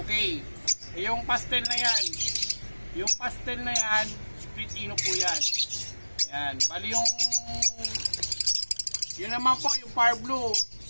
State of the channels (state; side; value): inverted; both; correlation -1.00